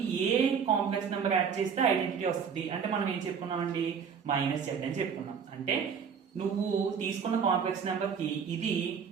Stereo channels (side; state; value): left; quieter; 6.7 dB